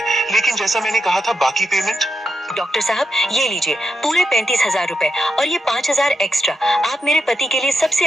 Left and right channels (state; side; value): normal; both; correlation 0.85